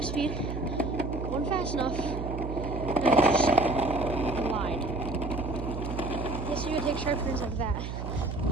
speed, going fast enough, and I just glide. Yes, you can take sharp turns like that,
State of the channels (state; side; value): noise; right; hum, 5 dB below the sound